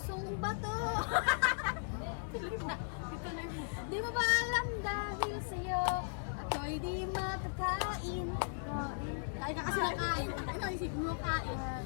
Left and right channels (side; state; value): right; silent; 53 dB below the other